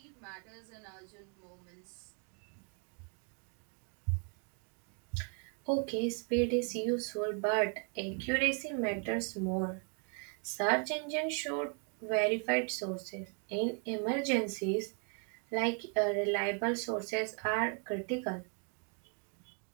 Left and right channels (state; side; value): quieter; left; 39.7 dB